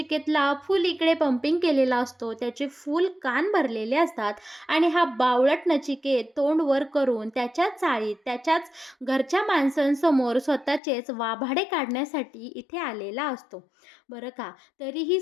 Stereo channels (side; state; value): right; drops out; at 10.8 s